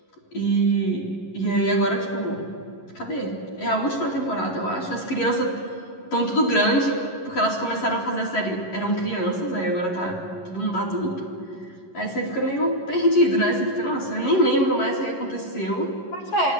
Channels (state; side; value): late; right; 11 ms